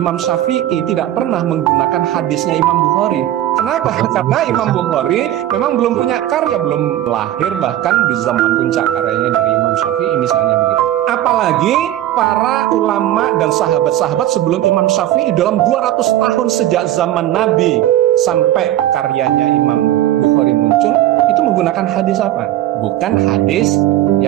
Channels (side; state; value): left; quieter; 13.2 dB